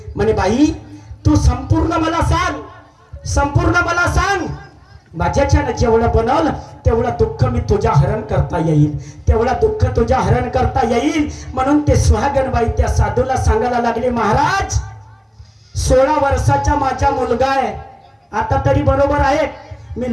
म्हणे बाई तू संपूर्ण मला सांग, संपूर्ण मला सांग. माझ्याच्यानं जेवढं बनवलं तेवढं दुःख मी तुझ्या हरण करता येईल, तेवढं दुःख तुझ्या हरण करता येईल. म्हणून ते सुहागणबाई त्या साधूला सांगायला लागले, महाराज 16 वर्षाचा माझा मुलगा आहे. आता तरी बरोबर आहे, मी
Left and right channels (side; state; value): both; identical; correlation 1.00